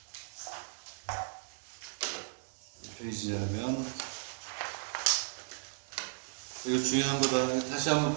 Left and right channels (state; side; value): silent; left; digital silence